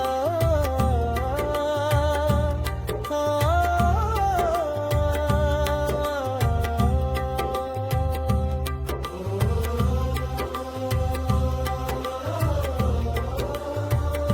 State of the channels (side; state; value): both; identical; correlation 1.00